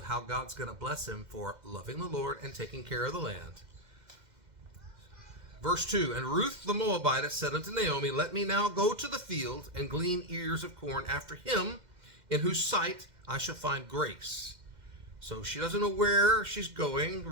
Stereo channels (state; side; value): late; left; 2.0 ms